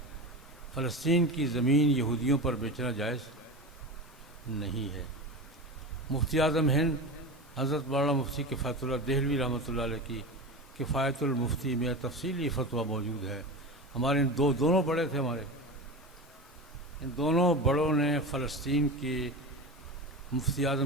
فلسطین کی زمین یہودیوں پر بیچنا جائز نہیں ہے۔ مفتی اعظم ہند حضرت مولانا مفتی کفایت اللہ دہلوی رحمۃ اللہ علیہ کی کفایت المفتی میں تفصیلی فتویٰ موجود ہے۔ ہمارے دونوں بڑے تھے، ہمارے ان دونوں بڑوں نے فلسطین کے مفتی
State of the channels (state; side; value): normal; both; correlation 0.26